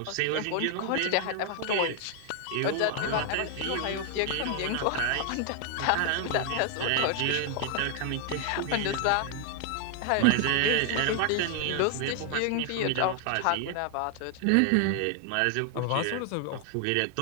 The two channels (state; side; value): different; both; correlation 0.00